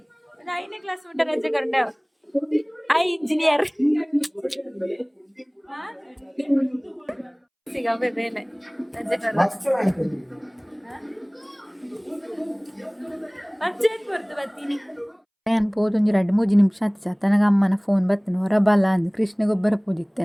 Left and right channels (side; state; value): both; identical; correlation 1.00